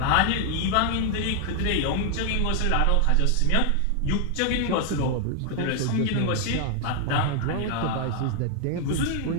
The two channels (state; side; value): different; both; correlation 0.00